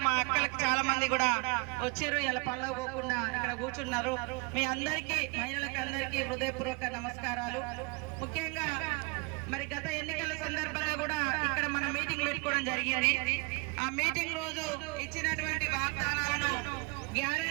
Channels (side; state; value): left; quieter; 31.2 dB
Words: మా అక్కలకు చాలా మంది కూడా వచ్చారు. ఇలా పళ్ళ పోకుండా ఇక్కడ కూర్చున్నారు. మీ అందరికీ, మహిళలకు అందరికీ హృదయపూర్వక నమస్కారాలు. ముఖ్యంగా మరి గత ఎన్నికల సందర్భంగా కూడా ఇక్కడ మనం మీటింగ్ పెట్టుకోవడం జరిగింది. ఆ మీటింగ్ రోజు ఇచ్చినటువంటి వాగ్దానాలను,